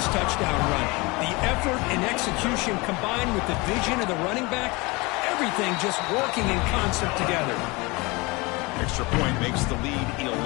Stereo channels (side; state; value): right; quieter; 25.2 dB